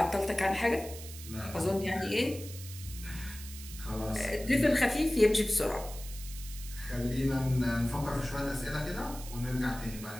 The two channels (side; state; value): right; noise; hiss, 13 dB below the sound